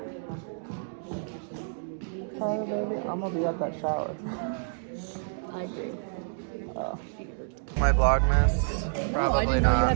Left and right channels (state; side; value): silent; left; digital silence